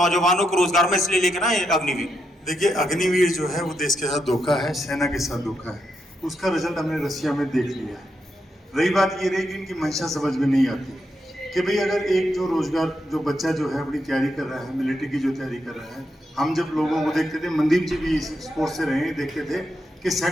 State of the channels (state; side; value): normal; both; correlation 0.82